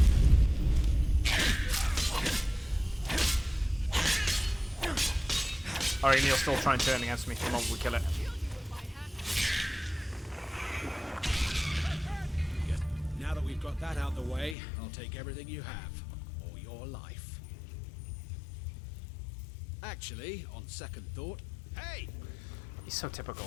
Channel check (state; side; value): drops out; right; at 14.6 s